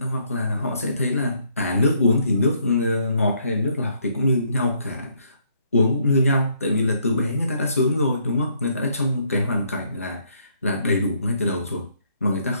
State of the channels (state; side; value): inverted; both; correlation -0.70